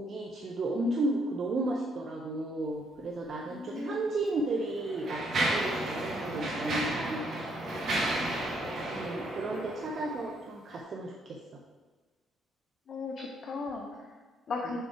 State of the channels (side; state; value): both; normal; correlation 0.71